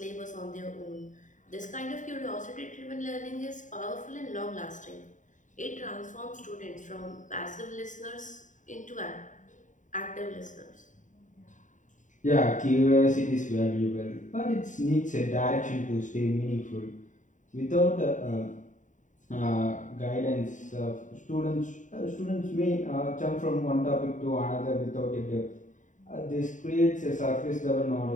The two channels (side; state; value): right; late; 0.36 ms